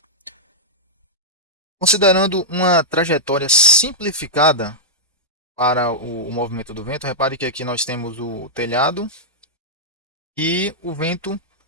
Considerando uma trajetória simplificada para o movimento do vento, repare que aqui nós temos o telhado e o vento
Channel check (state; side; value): normal; both; correlation -0.08